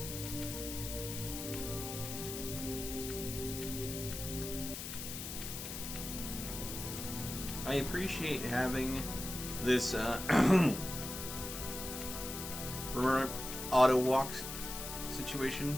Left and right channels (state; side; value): noise; left; hiss, 7 dB below the sound